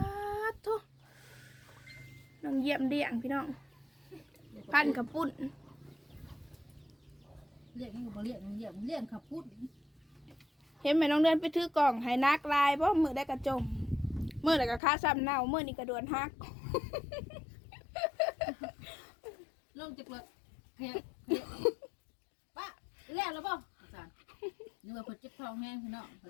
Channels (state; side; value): drops out; right; at 14.8 s